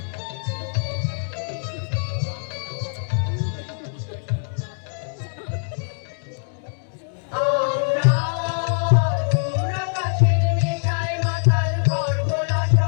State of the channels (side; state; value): right; silent; digital silence